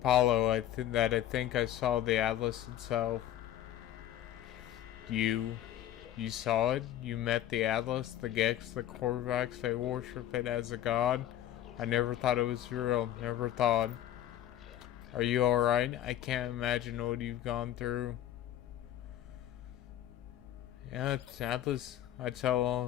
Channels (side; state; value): right; quieter; 12.0 dB